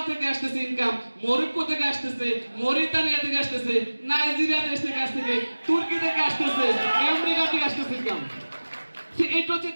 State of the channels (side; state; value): both; inverted; correlation -1.00